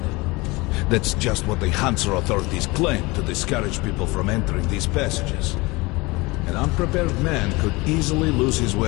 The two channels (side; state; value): right; quieter; 23.7 dB